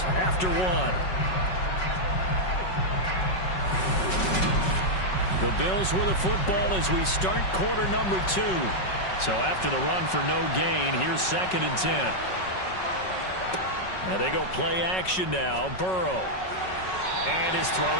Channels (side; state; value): right; late; 5.4 ms